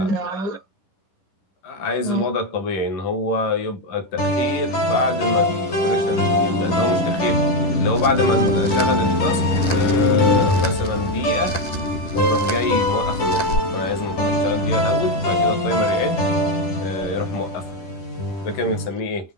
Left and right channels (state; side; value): late; right; 10 ms